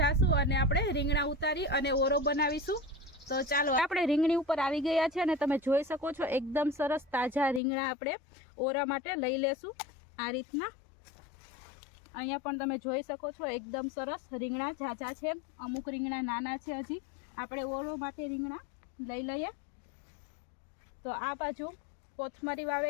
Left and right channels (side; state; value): right; drops out; at 7.6 s